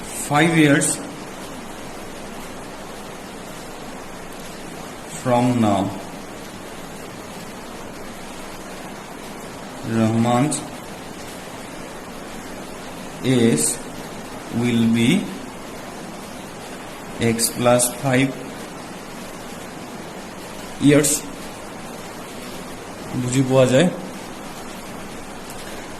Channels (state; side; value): identical; both; correlation 1.00